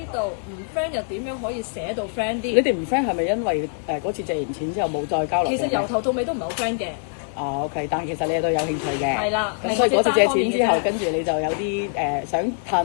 道唔 friend 又點樣可以寫到 friend 啲？你哋唔 friend 係咪因為嗰次借完錢之後冇再交流？其實由頭到尾都唔係好 friend 嘅。OK，但係其實你哋都有興趣嘅。係啦。咁所以嗰次借錢之後，跟住你就有啲想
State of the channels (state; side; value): silent; right; digital silence